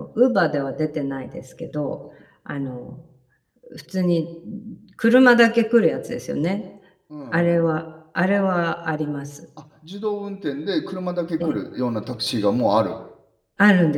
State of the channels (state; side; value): identical; both; correlation 1.00